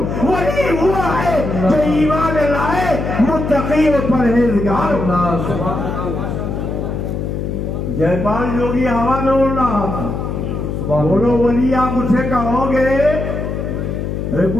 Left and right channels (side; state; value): left; noise; hum, 3 dB below the sound